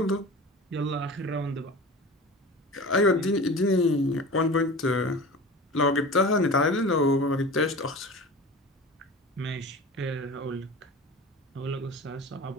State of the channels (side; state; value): both; normal; correlation 0.35